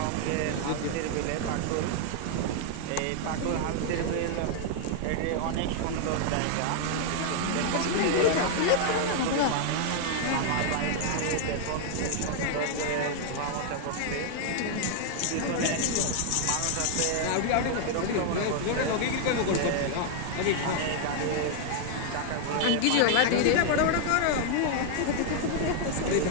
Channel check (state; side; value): different; both; correlation 0.00